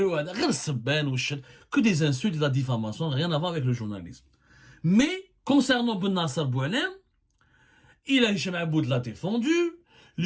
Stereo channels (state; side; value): identical; both; correlation 1.00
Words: وهذا غير السبان والشر que des insultes de la diffamation, rien à voir avec le journalisme. Mais concernant Ben Nasser Boualem, Hicham Aboud l'a défendu,